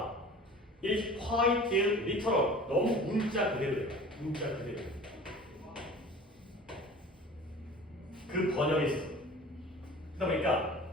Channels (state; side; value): normal; both; correlation 0.42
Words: is quite literal. 너무 문자 그대로예요. 문자 그대로. 그 번역이 있어. 그러다 보니까